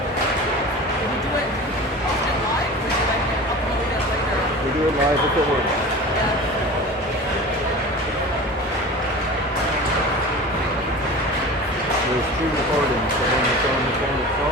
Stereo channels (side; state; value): both; normal; correlation 0.35